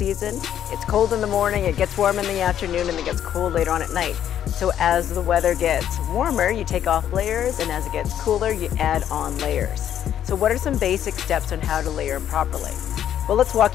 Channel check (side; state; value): right; quieter; 10.2 dB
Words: it's cold in the morning, it gets warm in the afternoon, and it gets cold later on at night. So as the weather gets warmer, you take off layers, and as it gets cooler, you add on layers. So what are some basic steps on how to layer properly? Well, let's